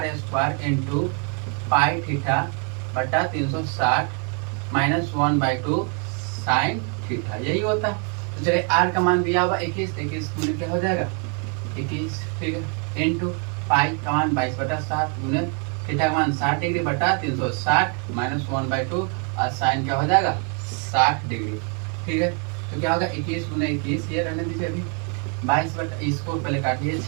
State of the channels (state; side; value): quieter; left; 37.4 dB